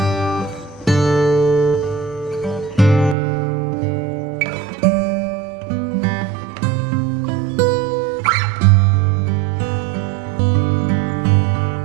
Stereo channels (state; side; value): drops out; left; at 3.2 s